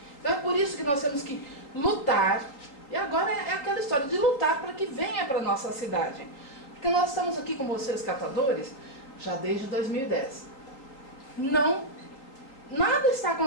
Então é por isso que nós temos que lutar, e agora é aquela história de lutar para que venha para a nossa cidade. Porque nós estamos aqui com vocês, catadores, já desde 2010. Nada está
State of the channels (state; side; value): late; right; 3.8 ms